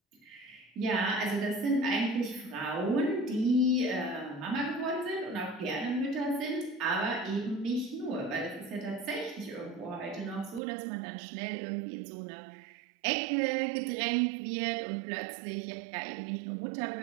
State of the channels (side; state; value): left; drops out; at 10.6 s